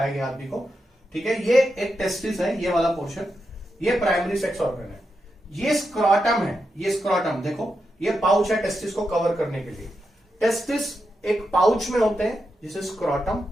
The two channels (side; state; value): both; normal; correlation 0.86